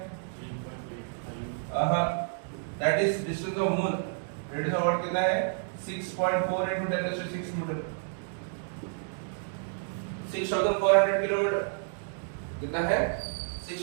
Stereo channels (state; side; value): silent; left; digital silence